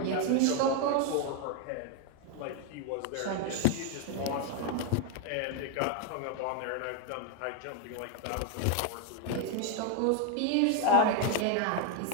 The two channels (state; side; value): different; both; correlation 0.01